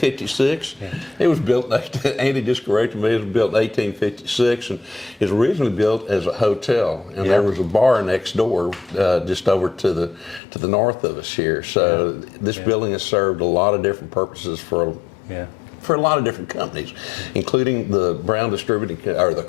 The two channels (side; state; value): right; drops out; at 10.4 s